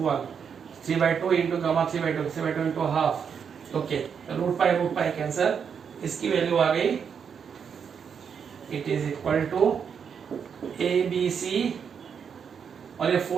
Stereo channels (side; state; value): left; quieter; 7.0 dB